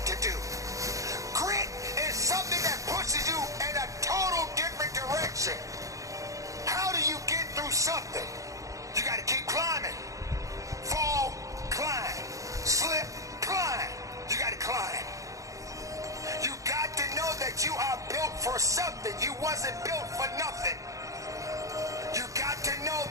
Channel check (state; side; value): late; left; 0.16 ms